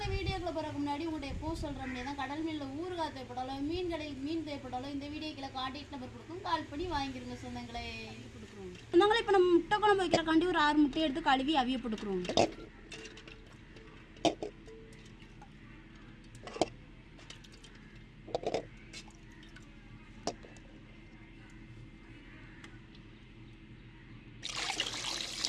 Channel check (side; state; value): both; identical; correlation 1.00